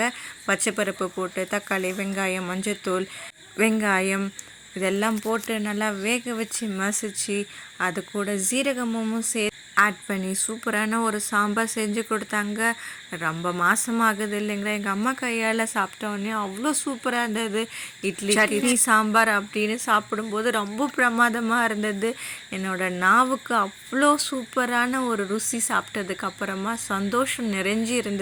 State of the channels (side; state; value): both; identical; correlation 1.00